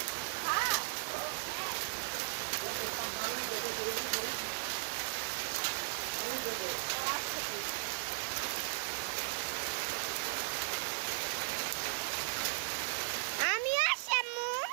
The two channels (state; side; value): silent; left; 53 dB below the other